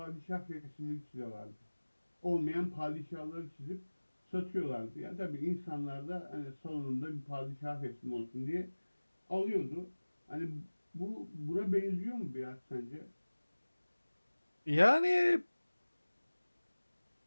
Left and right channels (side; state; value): both; inverted; correlation -1.00